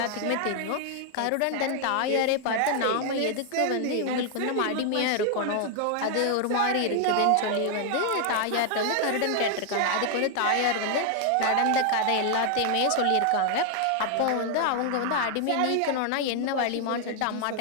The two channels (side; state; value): both; different; correlation 0.00